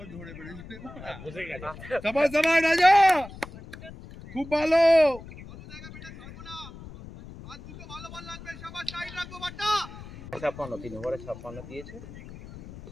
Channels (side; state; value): left; noise; rumble, 15 dB below the sound